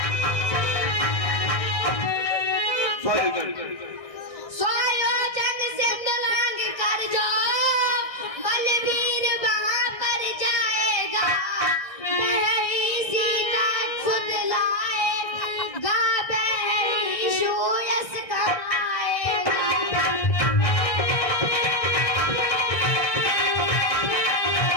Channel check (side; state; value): right; late; 1.6 ms